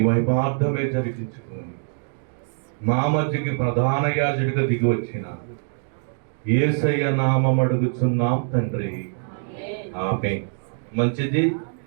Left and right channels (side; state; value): left; silent; digital silence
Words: మహిమార్థమే జరిగించుకుని మా మధ్యకి ప్రధాన యాజకుడిగా దిగి వచ్చిన యేసయ్య నామం అడుగుచున్నాం తండ్రి. ఆమేన్. మంచిది,